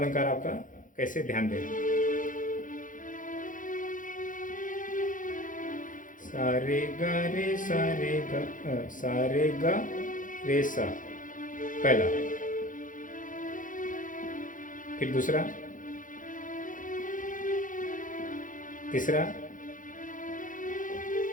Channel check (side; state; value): right; late; 0.38 ms